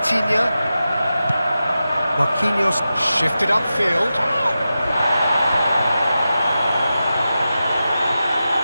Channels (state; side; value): inverted; both; correlation -0.92